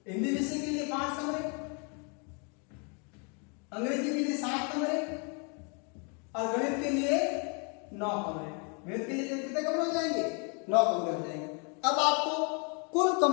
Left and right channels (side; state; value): right; quieter; 36.4 dB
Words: हिंदी विषय के लिए 5 कमरे, अंग्रेजी के लिए 7 कमरे और गणित के लिए 9 कमरे। गणित के लिए कितने कमरे हो जाएंगे? 9 कमरे हो जाएंगे। अब आपको कुल